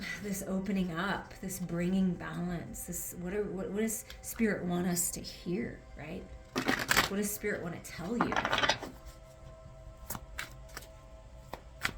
this opening up, this bringing balance, this what does Spirit want us to hear, right? What does Spirit want to tell you?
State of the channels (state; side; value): identical; both; correlation 1.00